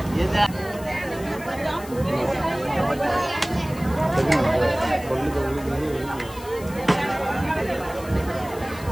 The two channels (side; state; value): left; noise; hiss, 18 dB below the sound